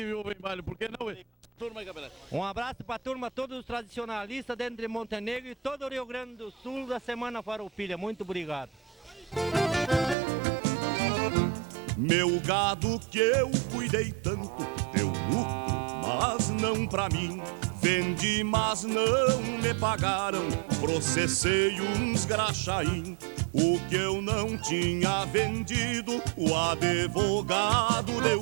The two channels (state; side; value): drops out; left; at 10.2 s